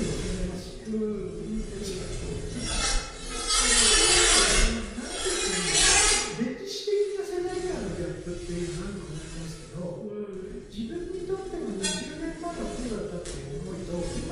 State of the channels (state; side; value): identical; both; correlation 1.00